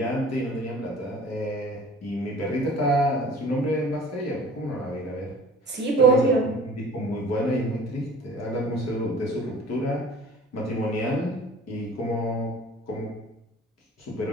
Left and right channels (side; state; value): both; normal; correlation 0.46